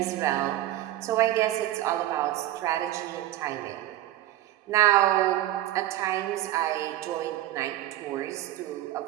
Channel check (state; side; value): quieter; left; 14.2 dB